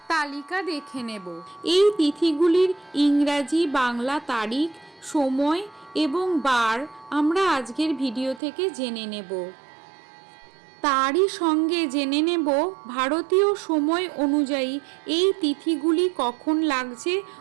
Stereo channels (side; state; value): left; drops out; at 8.4 s